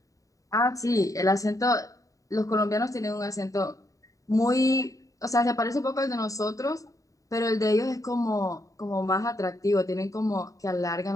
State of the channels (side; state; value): right; late; 0.16 ms